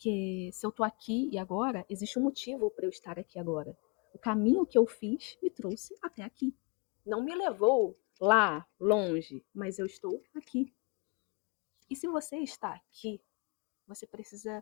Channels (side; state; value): right; quieter; 32.3 dB